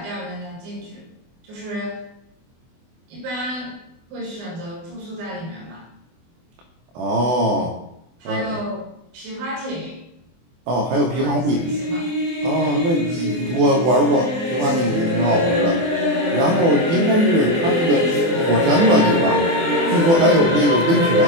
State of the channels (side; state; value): left; late; 24 ms